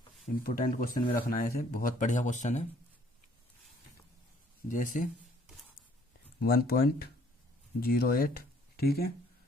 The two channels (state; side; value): normal; both; correlation 0.61